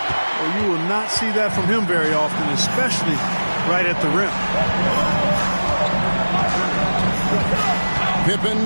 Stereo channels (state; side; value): inverted; both; correlation -1.00